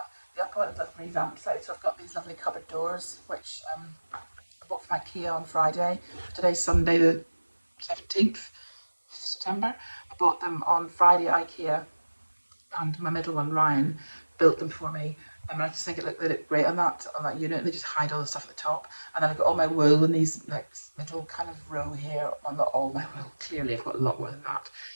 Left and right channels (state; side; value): inverted; both; correlation -1.00